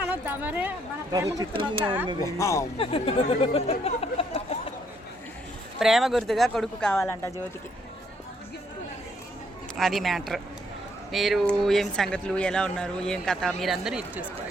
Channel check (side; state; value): both; normal; correlation 0.70